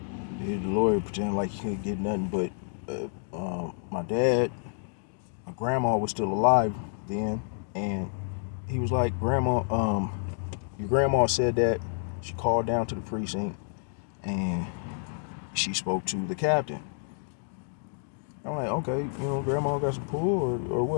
The lawyer pretended like he couldn't get nothing, but my dad, my grandma was still alive then, and he was like, "Grandma, your grandma said that she called down to the precinct and she spoke to the captain." I'm like, okay, grandma got some pull or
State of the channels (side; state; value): right; silent; digital silence